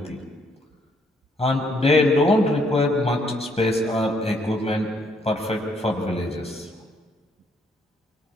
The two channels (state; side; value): normal; both; correlation 0.70